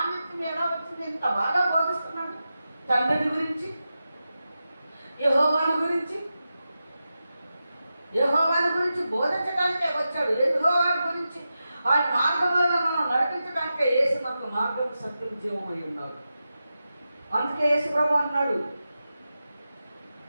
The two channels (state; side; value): inverted; both; correlation -0.91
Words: ఎలా వచ్చింది? ఇంత బాగా బోధిస్తున్నాడు తండ్రిని గురించి, యెహోవాను గురించి బోధించడానికే వచ్చాడు. యెహోవాను గురించి ఆయన మార్గంలో మనం నడిపించడానికే యేసు మనకు మార్గం, సత్యం, జీవమై ఉన్నాడు. అందుకే యేసు ప్రభు అన్నాడు,